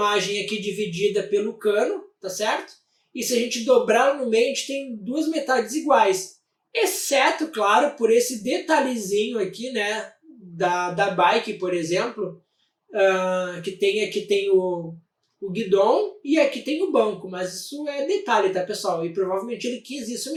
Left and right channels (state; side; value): identical; both; correlation 1.00